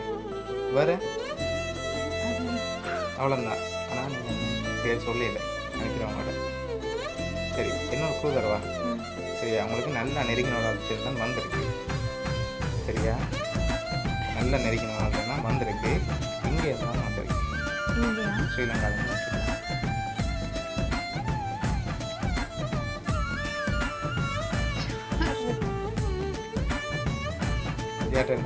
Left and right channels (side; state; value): both; identical; correlation 1.00